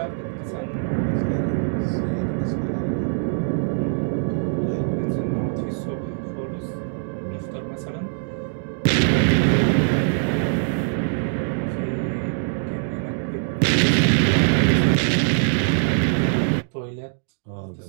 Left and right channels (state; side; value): silent; left; digital silence